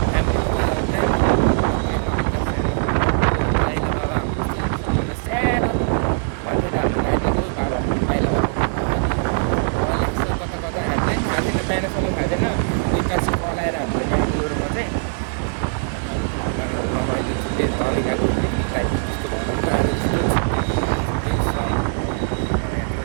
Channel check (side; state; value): left; silent; digital silence